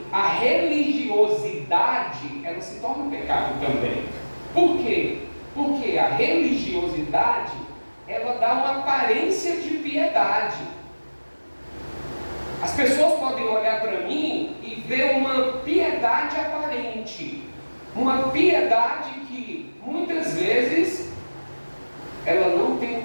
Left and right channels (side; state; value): both; inverted; correlation -1.00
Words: a religiosidade, ela se torna pecado também. Por quê? Porque a religiosidade, ela dá uma aparência de piedade. As pessoas podem olhar para mim e ver uma piedade aparente. Uma piedade que, muitas vezes, ela não tem